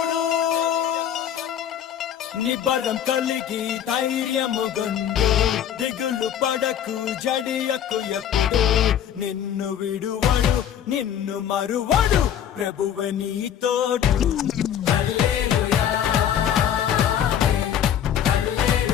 నిబరం కలిగి ధైర్యముగుండు దిగులు పడకు జడియకు ఎప్పుడు నిన్ను విడువడు నిన్ను మరువడు ప్రభువే నీ తోడు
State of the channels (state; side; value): quieter; right; 9.6 dB